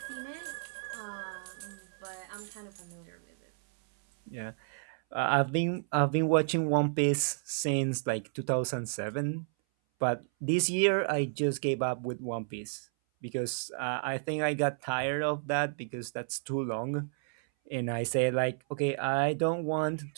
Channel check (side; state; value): left; silent; 57 dB below the other